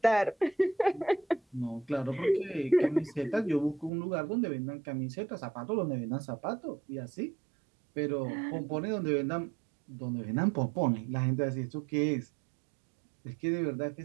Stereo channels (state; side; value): drops out; left; at 3.9 s